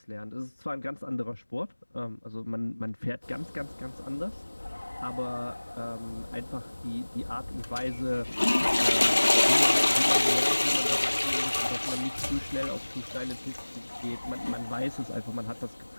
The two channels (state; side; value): inverted; both; correlation -1.00